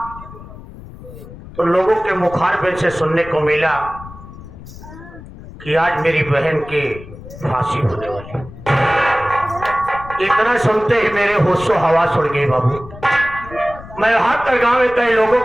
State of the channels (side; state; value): left; noise; rumble, 16 dB below the sound